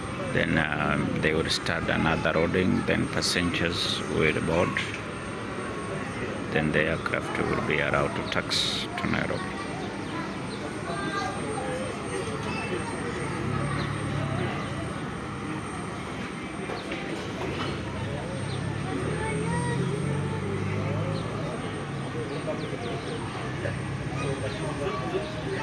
Then they will start another roading. Then passengers will board. Then the aircraft will be allowed to taxi to Nairobi.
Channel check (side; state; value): both; identical; correlation 1.00